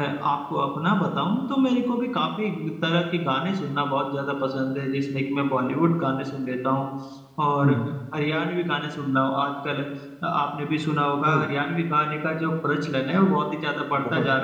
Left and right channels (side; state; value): both; identical; correlation 1.00